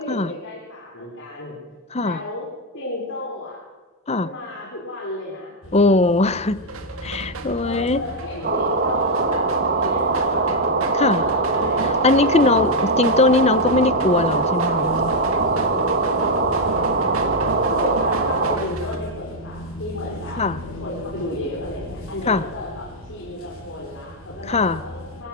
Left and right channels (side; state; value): both; normal; correlation 0.01